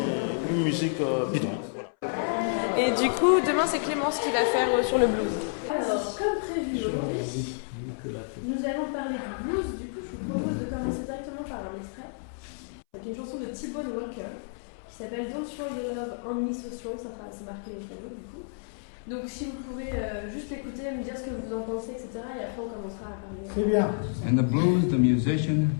une musique bidon. Et du coup, demain c'est Clémence qui va faire sur le blues. Alors, comme prévu aujourd'hui, nous allons parler du blues. Du coup, je vous propose de commencer directement par un extrait. C'est une chanson de T-Bone Walker qui s'appelle Don't Throw Your Love on Me So Strong. Ça sera marqué au piano du coup. Donc, si vous pouvez juste l'écouter, me dire ce que vous en pensez, etc. Et après, on commencera à parler. C'est bien. In the blues, the musician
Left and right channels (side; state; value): right; silent; 58 dB below the other